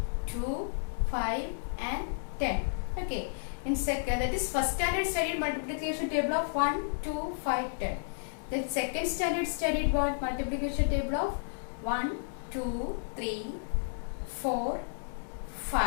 2, 5 and 10. Okay, in second, that is first standard studied multiplication table of 1, 2, 5, 10. Then second standard studied what? Multiplication table of 1, 2, 3, 4,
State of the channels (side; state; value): right; silent; digital silence